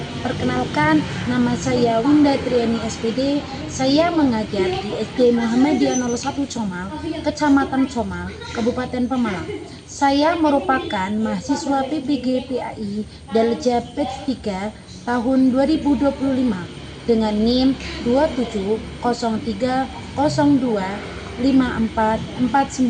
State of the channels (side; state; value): both; identical; correlation 1.00